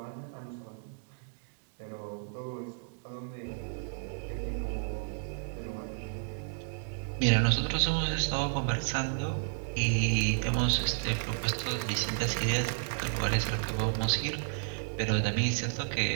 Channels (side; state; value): left; silent; digital silence